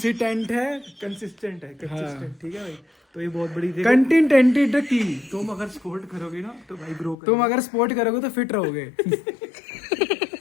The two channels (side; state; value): right; drops out; at 7.2 s